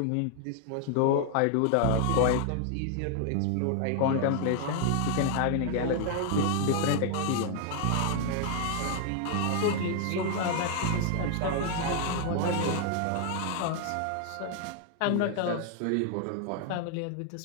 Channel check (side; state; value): both; different; correlation 0.00